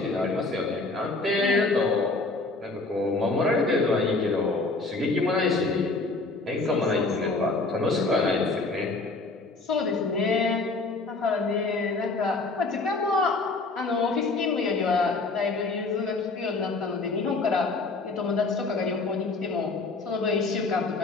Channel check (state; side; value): quieter; right; 3.5 dB